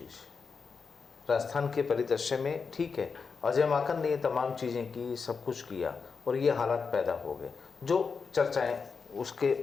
राजस्थान के परिदृश्य में ठीक है, अजय माकन ने ये तमाम चीज़ें की, सब कुछ किया और ये हालात पैदा हो गए जो चर्चाएं उसके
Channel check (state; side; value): quieter; right; 5.3 dB